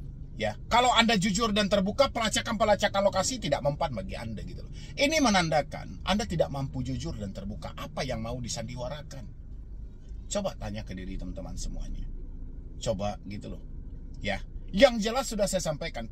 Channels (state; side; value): identical; both; correlation 1.00